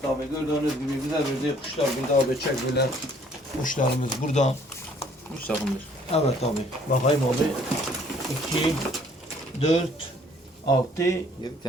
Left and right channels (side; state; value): both; normal; correlation 0.59